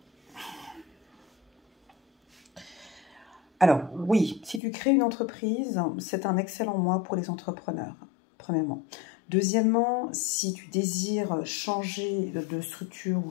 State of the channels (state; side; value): drops out; right; at 4.6 s